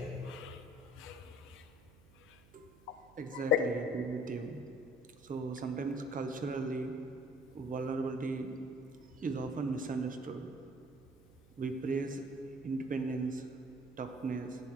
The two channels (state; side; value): noise; right; hum, 25 dB below the sound